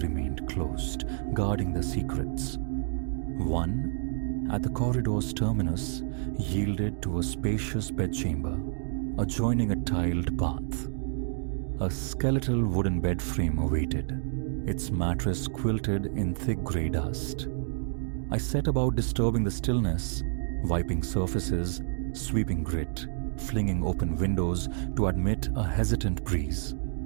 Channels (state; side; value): silent; left; digital silence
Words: remained closed, guarding their secrets. One, at the corridor's terminus, yielded to a spacious bedchamber, adjoining a tiled bath. A skeletal wooden bed frame awaited, its mattress quilted in thick grey dust. I set about disturbing the stillness, wiping surfaces, sweeping grit, flinging open windows to admit a hesitant breeze.